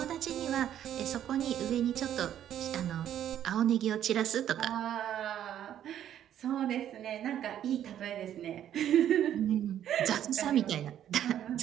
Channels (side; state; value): left; quieter; 10.7 dB